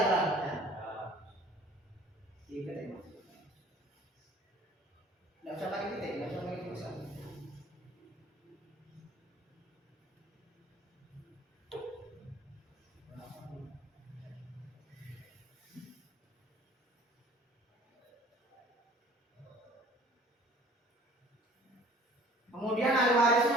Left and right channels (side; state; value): both; normal; correlation 0.51